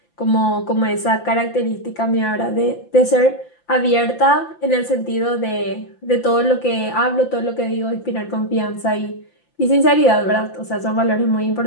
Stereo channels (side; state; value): right; late; 5.8 ms